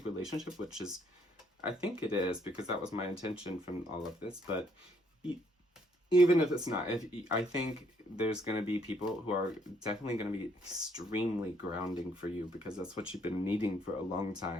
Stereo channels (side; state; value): both; normal; correlation 0.68